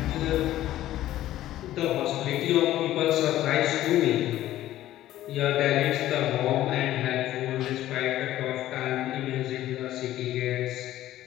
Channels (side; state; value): right; quieter; 13.9 dB